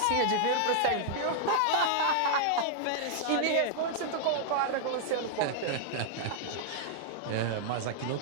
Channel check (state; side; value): different; both; correlation -0.01